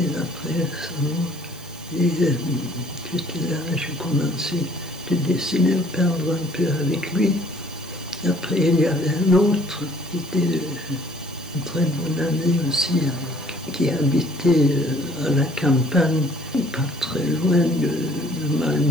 après sa mort, et j'étais là, j'ai commencé de dessiner, peindre un peu avec lui. Après, il y avait un autre qui était un très bon ami aussi, qui habitait à la campagne, pas très loin de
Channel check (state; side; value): noise; right; hiss, 20 dB below the sound